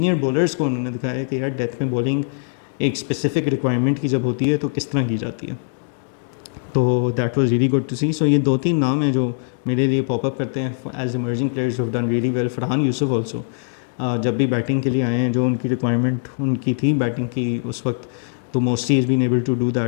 bowlers کو انہوں نے دکھایا کہ یار ڈیتھ میں بولنگ ایک اسپیسیفک ریکوائرمنٹ کی جب ہوتی ہے تو کس طرح کی جاتی ہے. تو that was really good to see. So یہ 2-3 نام ہیں جو میرے لیے پاپ اپ کرتے ہیں ایز ایمرجنگ پلیئرز ہو ڈن ریئلی ویل. فرحان یوسف آلسو جب بھی بیٹنگ کے لیے آئے ہیں, جو ان کی ریکوائرمنٹ ان کی تھی بیٹنگ کی اس وقت, تو mostly is been able to do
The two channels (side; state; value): right; silent; 64 dB below the other